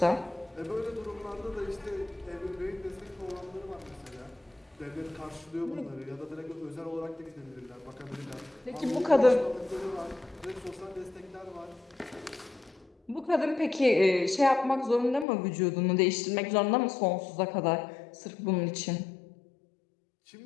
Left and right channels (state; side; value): drops out; right; at 15.2 s